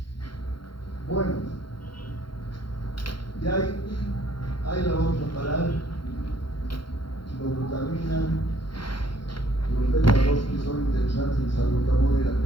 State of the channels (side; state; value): right; late; 0.73 ms